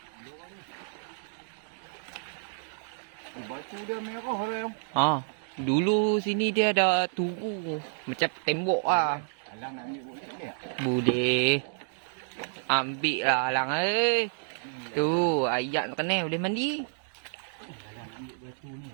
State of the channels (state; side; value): silent; left; digital silence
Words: Batu dia merah lah. Dulu sini dia ada turu. Macam tembok lah. Alang nak ambil bukit dia? Boleh. Ambil lah Alang Tu, ayat nak kena boleh mandi. Alang ambil batu ni